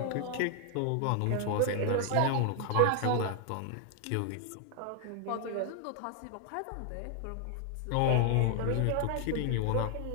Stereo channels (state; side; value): different; both; correlation 0.00